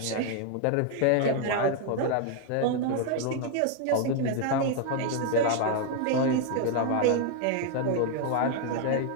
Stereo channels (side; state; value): both; different; correlation 0.00